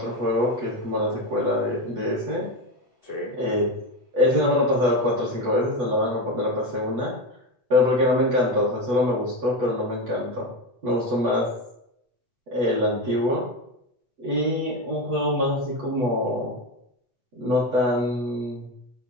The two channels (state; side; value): late; left; 8.1 ms